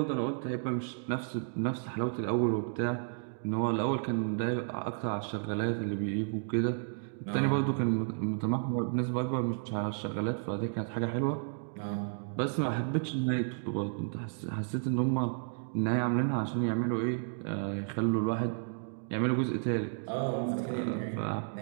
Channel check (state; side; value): silent; left; digital silence